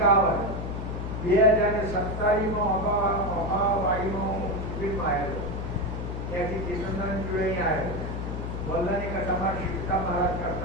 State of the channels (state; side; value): noise; left; hum, 5 dB below the sound